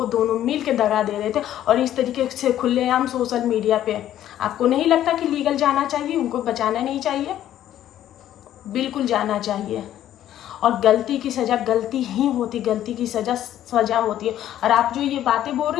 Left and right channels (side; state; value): right; quieter; 12.0 dB